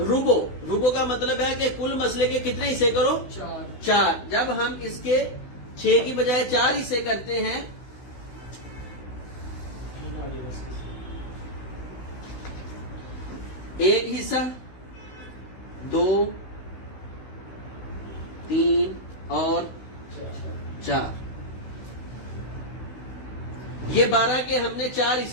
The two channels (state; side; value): late; right; 16 ms